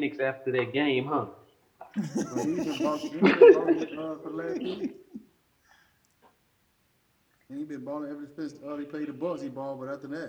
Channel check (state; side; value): identical; both; correlation 1.00